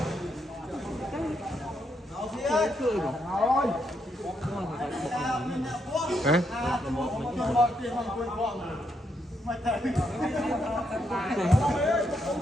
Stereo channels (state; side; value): normal; both; correlation 0.78